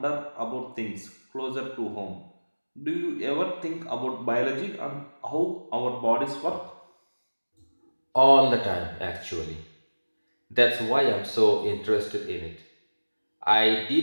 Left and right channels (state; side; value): inverted; both; correlation -1.00